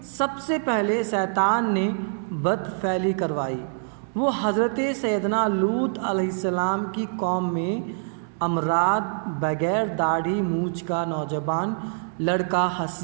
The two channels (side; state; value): left; silent; digital silence